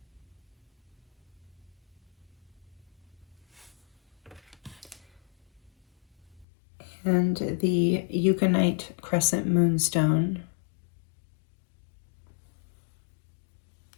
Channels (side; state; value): right; drops out; at 6.5 s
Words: And the Unakite Crescent moonstone.